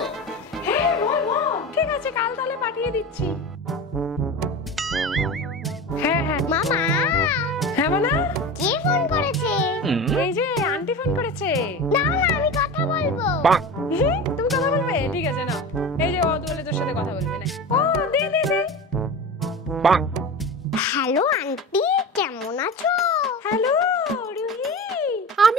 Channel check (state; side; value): normal; both; correlation 0.30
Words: হ্যাঁ বল বল। ঠিক আছে, কাল তাহলে পাঠিয়ে দিচ্ছি। হ্যাঁ হ্যাঁ মামা। হ্যাঁ মানা, কে ফোন করেছে? এই যে আন্টি ফোন করেছে। না না, আমি কথা বলবো। তুমি কথা বলবে? ঠিক আছে না, এই যে ও বলে তোর সাথে কথা বলবে না। ও দে দে দে। হ্যালো আন্টি, কেমন আছো? হ্যালো রুহি,